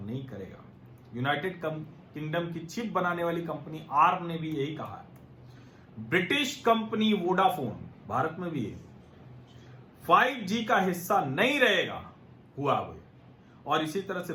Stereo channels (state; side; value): identical; both; correlation 1.00